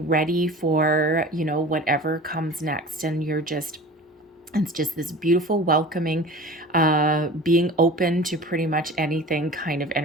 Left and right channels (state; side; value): normal; both; correlation 0.38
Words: ready for, you know, whatever comes next. And you're just, it's just this beautiful, welcoming, being open to pretty much anything kind of